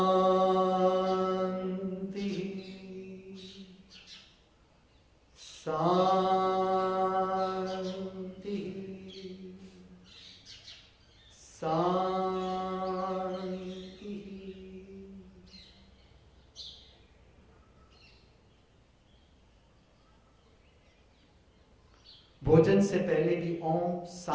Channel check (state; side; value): identical; both; correlation 1.00